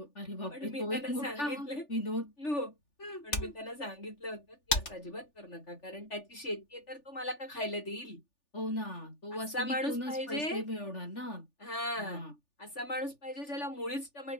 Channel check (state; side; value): late; right; 3.4 ms